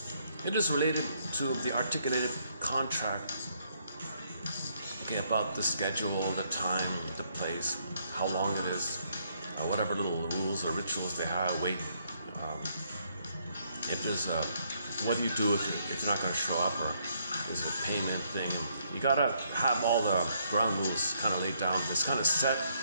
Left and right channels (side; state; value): both; inverted; correlation -0.71